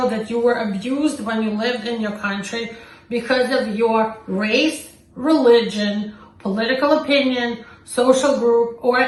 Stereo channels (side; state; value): both; identical; correlation 1.00